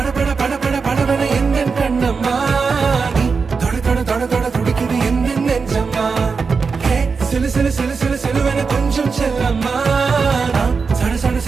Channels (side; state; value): left; quieter; 5.0 dB